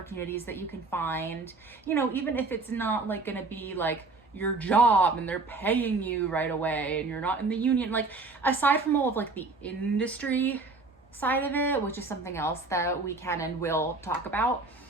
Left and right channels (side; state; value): left; quieter; 3.7 dB